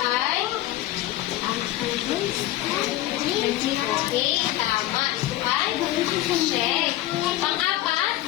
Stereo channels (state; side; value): quieter; right; 15.4 dB